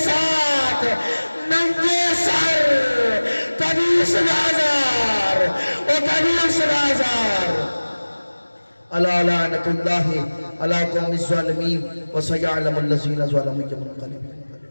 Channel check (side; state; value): both; inverted; correlation -1.00